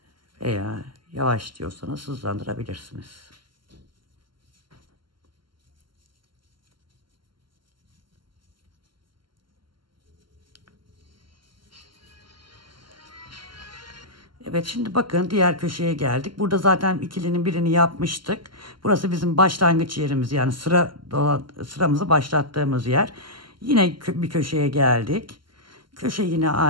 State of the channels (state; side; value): late; left; 0.72 ms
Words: Veya yavaş diyorsanız hızlandırabilirsiniz. Evet, şimdi bakın diğer köşeye geldik. Burada zaten ikilinin birini yapmıştık. Burası bizim başlangıç yerimiz. Yani sıramızı başlattığımız yer. Yine bir köşeye geldik. Köşe yine